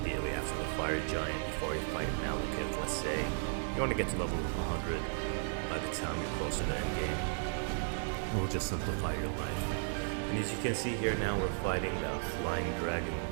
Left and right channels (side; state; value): left; silent; digital silence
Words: after the fire giant before you fight Malekith, let's say. You want to get to level 100 by the time you're close to the end game. It will just simplify your life. And as you can see here now, we're fighting the Flying Dragon